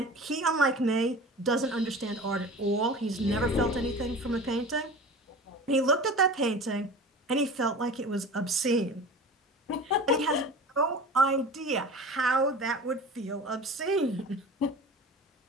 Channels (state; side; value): normal; both; correlation 0.36